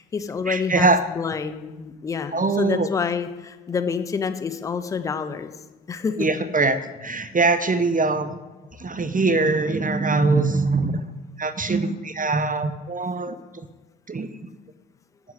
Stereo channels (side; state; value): both; normal; correlation 0.40